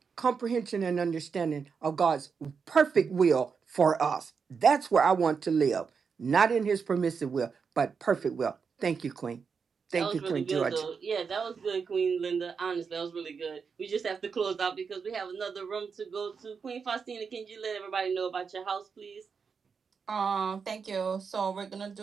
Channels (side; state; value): left; quieter; 5.8 dB